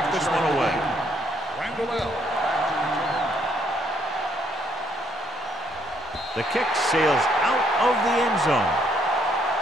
this one away. The kick sails out of the end zone.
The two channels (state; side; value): normal; both; correlation 0.69